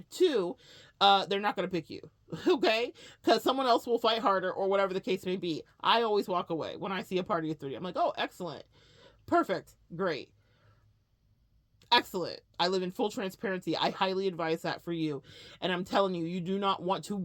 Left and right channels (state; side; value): identical; both; correlation 1.00